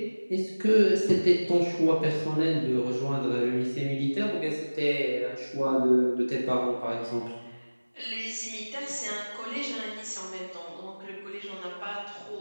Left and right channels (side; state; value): both; inverted; correlation -1.00